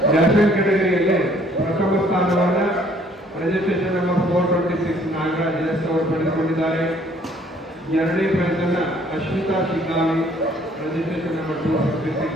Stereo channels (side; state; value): both; normal; correlation 0.61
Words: ನ್ಯಾಷನಲ್ ಕೆಟಗರಿಯಲ್ಲಿ ಪ್ರಥಮ ಸ್ಥಾನವನ್ನು ರಿಜಿಸ್ಟ್ರೇಷನ್ ನಂಬರ್ 426 ನಾಗರಾಜ್ ಎಸ್ ಅವರು ಪಡೆದುಕೊಂಡಿದ್ದಾರೆ. ಎರಡನೇ ಪ್ರೈಸ್ ಅನ್ನು ಅಶ್ವಿತಾ ಶಿಗ್ಗಾವಿ ರಿಜಿಸ್ಟ್ರೇಷನ್ ನಂಬರ್ 256